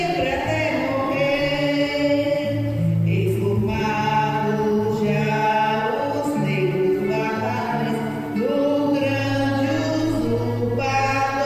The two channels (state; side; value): identical; both; correlation 1.00